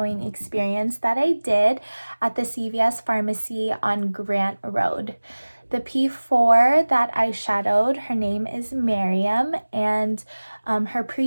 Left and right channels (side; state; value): both; inverted; correlation -1.00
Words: experience that I did at the CVS pharmacy on Grant Road. The P4 that I shadowed, her name is Miriam, and her